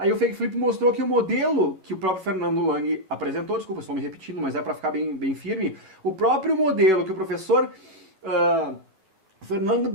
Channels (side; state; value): left; late; 10 ms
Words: o Fake Flip mostrou que o modelo que o próprio Fernando Lang apresentou, desculpa, estou me repetindo, mas é para ficar bem firme, o próprio modelo que o professor